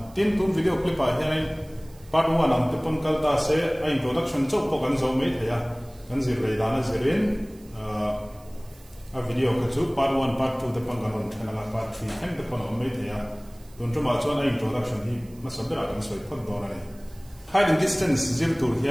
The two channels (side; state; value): right; noise; hiss, 27 dB below the sound